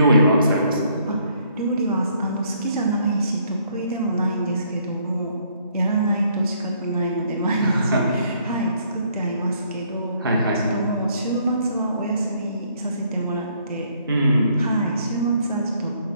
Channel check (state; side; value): inverted; both; correlation -0.66